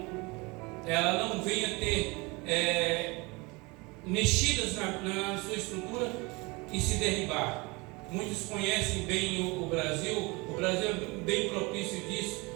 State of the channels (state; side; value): quieter; left; 26.0 dB